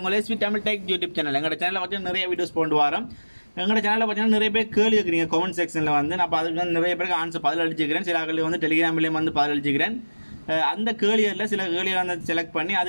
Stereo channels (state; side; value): inverted; both; correlation -1.00